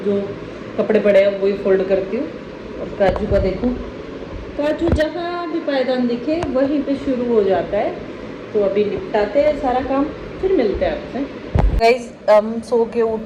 जो कपड़े पड़े हैं वही फोल्ड करती हूँ। और काजू का देखूँ, काजू जहाँ भी पायदान दिखे वहीं पे शुरू हो जाता है। तो अभी निपटाते हैं सारा काम, फिर मिलते हैं आपसे। गाइस हम सो के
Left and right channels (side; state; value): both; identical; correlation 1.00